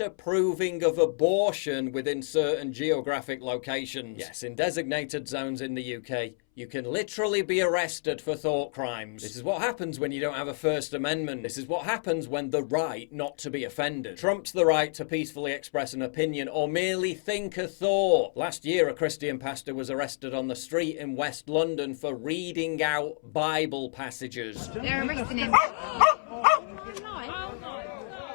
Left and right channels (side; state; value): right; silent; 59 dB below the other